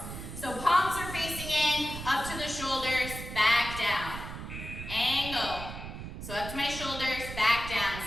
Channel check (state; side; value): noise; right; rumble, 9 dB below the sound